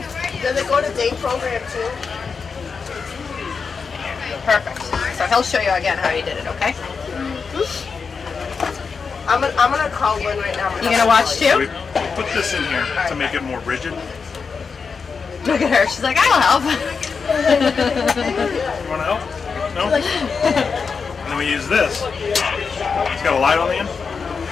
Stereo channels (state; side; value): quieter; right; 5.3 dB